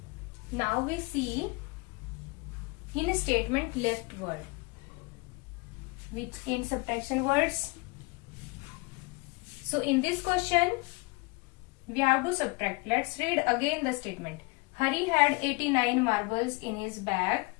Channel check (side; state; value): right; quieter; 26.7 dB